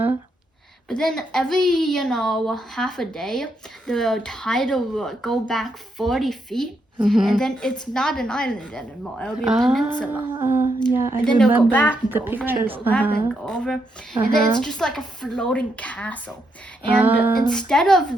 But then every, half a day, the tide will go back 40 feet, and then it's not an island anymore. It'll be a peninsula. Yeah, and then they'll go back and the go over pictures. and go back and go over. And then it's just like a floating castle. And instead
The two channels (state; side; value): normal; both; correlation 0.79